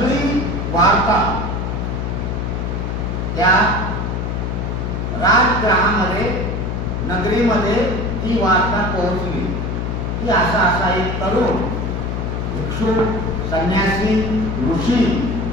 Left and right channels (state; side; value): noise; left; hum, 2 dB below the sound